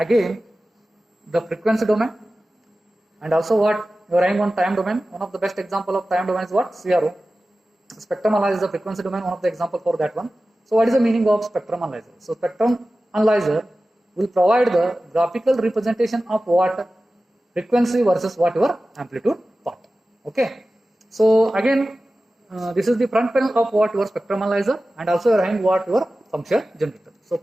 frequency domain, and also what you are having on time domain. One of the best example of time domain is what? CRO. Spectrum analyzer is the frequency domain, one of the example for that one. So what is the meaning of spectrum analyzer? So spectrum analyzer will provide the graphical representation of what frequency versus what your amplitude part. Okay. So again, this is the front panel of what your spectrum analyzer, and also you are having what your function generator. So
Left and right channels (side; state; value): both; normal; correlation 0.95